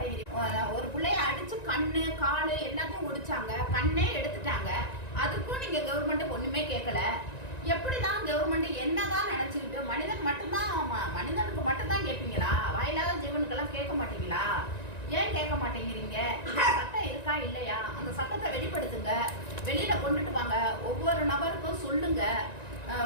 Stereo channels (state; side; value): late; right; 1.9 ms